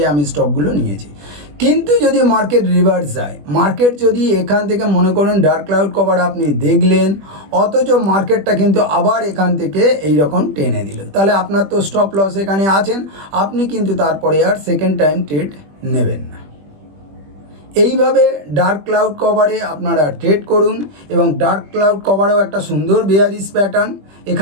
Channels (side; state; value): left; late; 20 ms